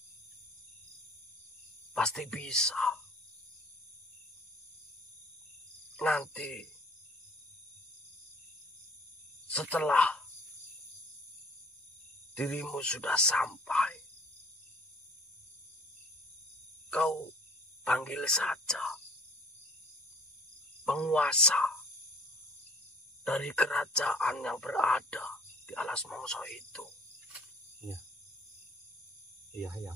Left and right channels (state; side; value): normal; both; correlation 0.53